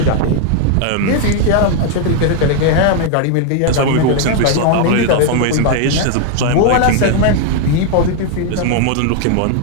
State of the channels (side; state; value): both; different; correlation 0.00